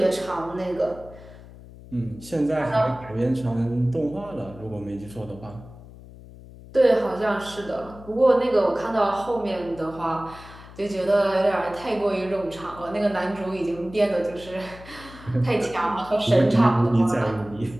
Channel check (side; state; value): left; noise; hum, 18 dB below the sound